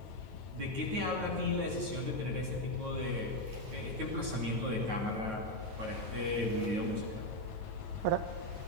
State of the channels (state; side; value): late; left; 9.3 ms